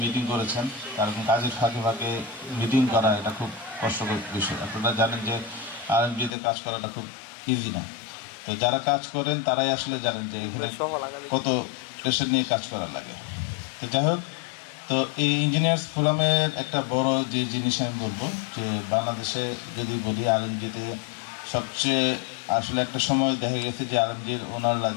মিটিং করেছেন, কারণ কাজের ফাঁকে ফাঁকে মিটিং করা এটা খুব কষ্টকর বিষয়। আপনারা জানেন যে আরএমজিতে কাজ করাটা খুব ইজি না। তো যারা কাজ করেন তারাই আসলে জানেন যে এখানে কত প্রেশার নিয়ে কাজ করা লাগে। তো যাই হোক, তো এই ইঞ্জিনিয়ার্স ফোরামের একটা বড় যে জিনিস আমি বলবো যে বাংলাদেশে যদি বলি আরএমজিতে সবচেয়ে আসলে একটা সময় দেখা গেছে যে আরএমজির ওনাররা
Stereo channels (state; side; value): drops out; right; at 6.3 s